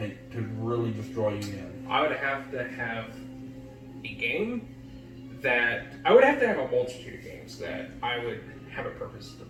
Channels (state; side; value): identical; both; correlation 1.00